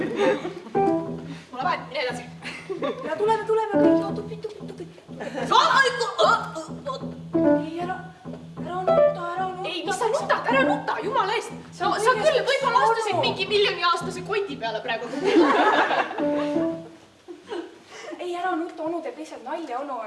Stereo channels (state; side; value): identical; both; correlation 1.00